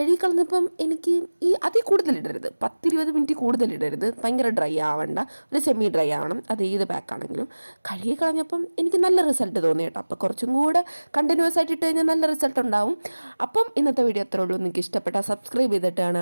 എനിക്ക് അതിൽ കൂടുതലിടരുത്, 10-20 മിനിറ്റ് കൂടുതലിടരുത്, ഭയങ്കര ഡ്രൈ ആവണ്ട, ഒരു സെമി ഡ്രൈ ആവണം. അത് ഏത് ബാക്കാണെങ്കിലും. കഴുകിക്കളഞ്ഞപ്പം എനിക്ക് നല്ല റിസൾട്ട് തോന്നി കേട്ടോ. അപ്പോൾ കുറച്ചും കൂടെ കണ്ടിന്യൂസ് ആയിട്ട് ഇട്ട് കഴിഞ്ഞാൽ നല്ല റിസൾട്ട് ഉണ്ടാവും. അപ്പം ഇന്നത്തെ വീഡിയോ അത്രേ ഉള്ളൂ. നിങ്ങൾക്ക് ഇഷ്ടപ്പെട്ടാൽ സബ്സ്ക്രൈബ്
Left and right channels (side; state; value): both; inverted; correlation -1.00